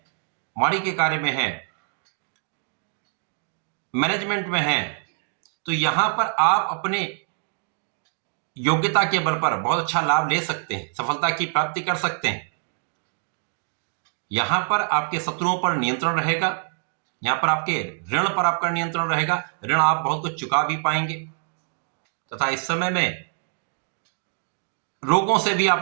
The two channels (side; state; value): left; silent; 62 dB below the other